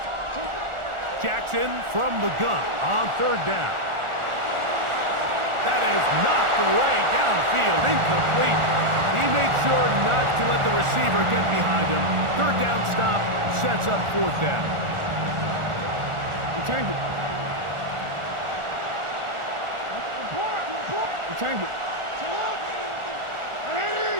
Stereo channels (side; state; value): left; late; 1.4 ms